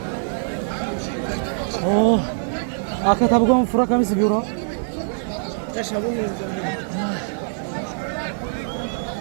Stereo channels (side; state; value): left; silent; 63 dB below the other